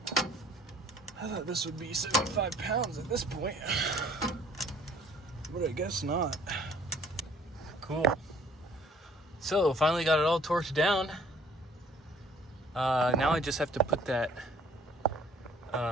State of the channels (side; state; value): both; normal; correlation 0.56